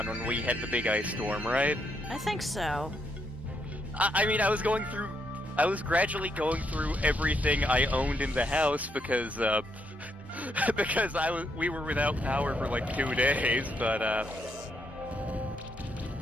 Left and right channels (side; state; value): both; normal; correlation 0.76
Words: when we had the big ice storm, right? I think so. I mean, I was gradually going through everything I owned in the house because we were without power for like 2 days, but